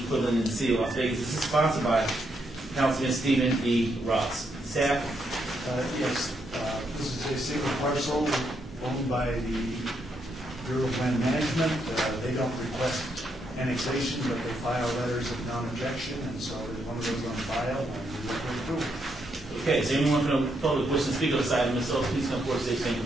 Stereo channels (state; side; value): normal; both; correlation 0.78